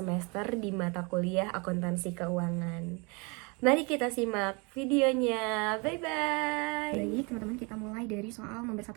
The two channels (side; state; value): left; quieter; 30.2 dB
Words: di mata kuliah Akuntansi Keuangan. Mari kita simak videonya. Bye-bye. Baik, teman-teman, kita mulai dari soal nomor 1